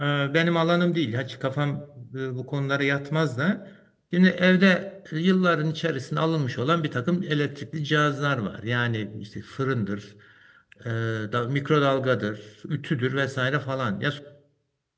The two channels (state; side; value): identical; both; correlation 1.00